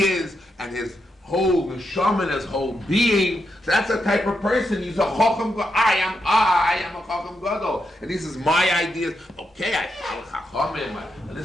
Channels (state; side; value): normal; both; correlation 0.84